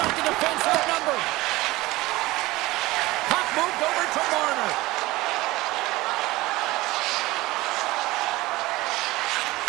the defense outnumbered. Puck moved over to Marner.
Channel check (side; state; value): left; quieter; 19.5 dB